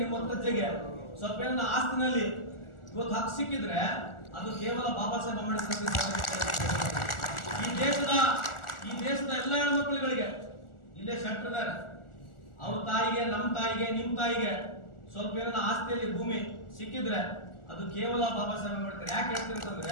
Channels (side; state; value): right; late; 1.4 ms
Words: ನಿಮ್ಮ ಮುತ್ತಜ್ಜಿಗೆ ಸ್ವಲ್ಪ ಏನನ್ನ ಆಸ್ತಿನಲ್ಲಿ ಇವತ್ತು ಹಕ್ಕು ಸಿಕ್ಕಿದ್ರೆ ಅದು ಕೇವಲ ಬಾಬಾ ಸಾಹೇಬ್ ಅಂಬೇಡ್ಕರ್. ಈ ದೇಶದ ಎಲ್ಲ ಹೆಣ್ಮಕ್ಳುಗಳಿಗೆ ಇಲ್ಲೇ ಶೆಟ್ರಿದ್ದಾರೆ. ಅವ್ರ ತಾಯಿಗೆ, ನಮ್ಮ ತಾಯಿಗೆ, ನಿಮ್ಮ ತಾಯಿಗೆ ಸ್ವಲ್ಪ ಏನನ್ನ ಆಸ್ತಿಯಲ್ಲಿ ಭೂಮಿ ಸಿಕ್ಕಿದ್ರೆ ಅದು ಕೇವಲ ಬಾಬಾ ಸಾಹೇಬ್ ಅಂಬೇಡ್ಕರ್. ಯಾಕೆ